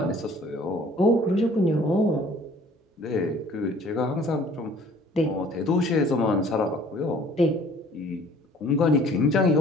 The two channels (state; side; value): normal; both; correlation 0.54